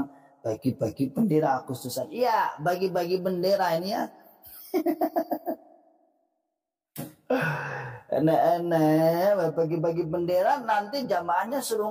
bagi-bagi bendera khususan. Iya, bagi-bagi bendera ini ya. Enak-enak bagi-bagi bendera, nanti jamaahnya suruh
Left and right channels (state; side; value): identical; both; correlation 1.00